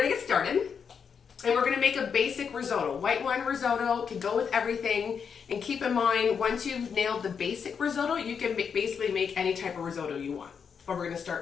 get started and we're gonna make a basic risotto. White wine risotto can go with everything. And keep in mind, once you've nailed the basic risotto, you can basically make any type of risotto you want. But we're gonna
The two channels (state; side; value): quieter; right; 6.6 dB